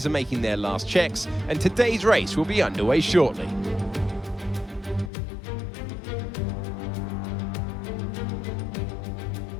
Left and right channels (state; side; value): drops out; right; at 5.1 s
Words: are making their last checks, and today's race will be underway shortly.